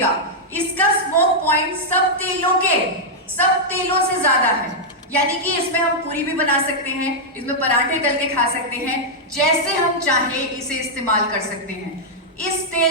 इसका स्मोक पॉइंट सब तेलों से ज्यादा है। यानी कि इसमें हम पूरी भी बना सकते हैं, इसमें पराठे तल के खा सकते हैं, जैसे हम चाहे इसे इस्तेमाल कर सकते हैं। इस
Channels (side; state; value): both; normal; correlation -0.05